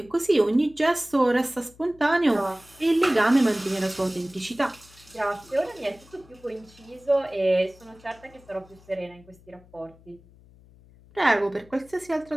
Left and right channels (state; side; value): noise; left; hum, 25 dB below the sound